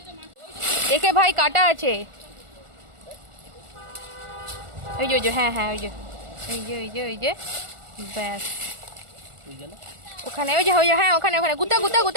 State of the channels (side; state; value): left; late; 1.4 ms